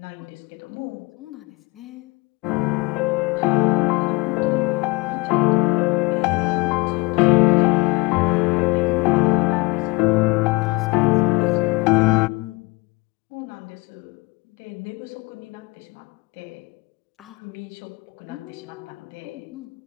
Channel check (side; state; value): right; quieter; 25.7 dB